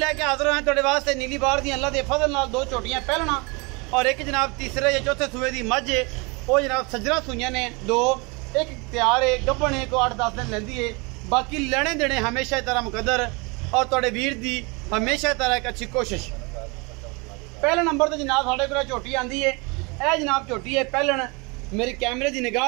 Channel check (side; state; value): left; quieter; 28.7 dB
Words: हाजिर हैं तुहाडे वास्ते नीली बार दी अल्लाह दे फजल नाल दो झोटियां पहलना और एक जनाब तीसरे या चौथे सूए दी मझ है। वो जनाब सज्जरा सूइयां ने दो, एक तैयार है गब्बन है को 8-10 दिन लैंदी है। बाकी लेने देने हमेशा तरह मुकद्दर और तुहाडे वीर दी हमेशा तरह एक अच्छी कोशिश। पहले नंबर तो जनाब साढ़े को झोटी आती है। यह जनाब झोटी है पहलन मेरे कैमरे की